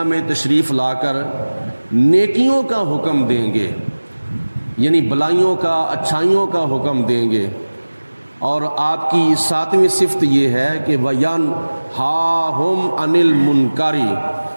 میں تشریف لا کر نیکیوں کا حکم دیں گے، یعنی بلائیوں کا، اچھائیوں کا حکم دیں گے۔ اور آپ کی ساتویں صفت یہ ہے کہ وَيَنْهَاهُمْ عَنِ الْمُنْكَرِ،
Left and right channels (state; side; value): inverted; both; correlation -1.00